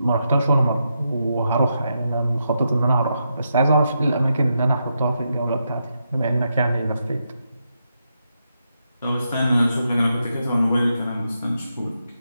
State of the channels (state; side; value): inverted; both; correlation -0.84